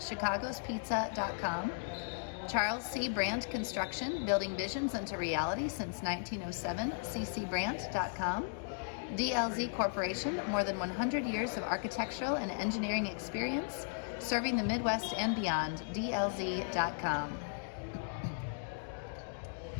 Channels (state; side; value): silent; right; digital silence